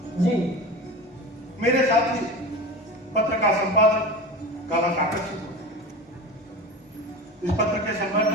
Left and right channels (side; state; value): both; normal; correlation 0.30